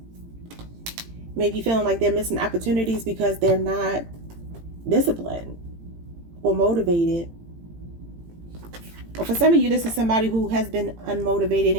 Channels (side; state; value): left; late; 18 ms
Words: Maybe feeling like they're missing opportunities because they're not disciplined or motivated. Or for some of you, this is somebody who has been unmotivated